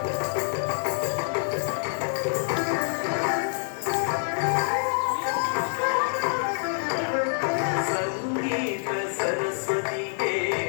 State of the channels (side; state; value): right; silent; digital silence